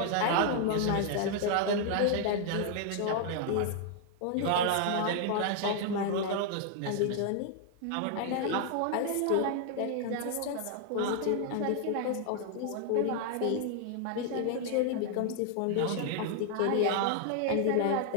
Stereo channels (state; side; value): different; both; correlation 0.00